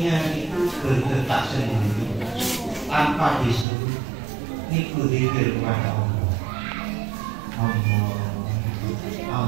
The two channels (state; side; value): drops out; left; at 3.7 s